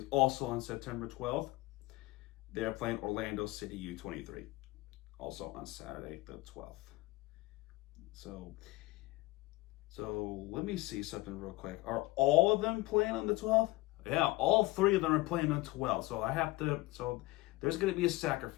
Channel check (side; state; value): right; quieter; 20.6 dB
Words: also on September 12th. They're playing Orlando City U23, also on Saturday the 12th. So let me see something real quick. Are all of them playing on the 12th? Yeah, all 3 of them are playing on 12th. So there's going to be a